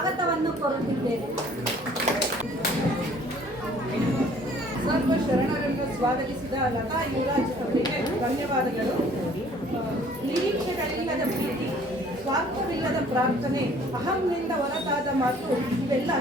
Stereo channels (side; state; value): both; normal; correlation 0.55